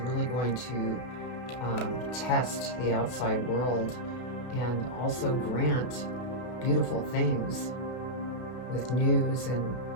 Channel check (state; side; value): late; right; 32 ms